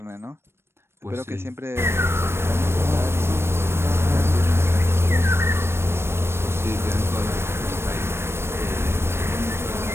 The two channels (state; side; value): late; left; 0.12 ms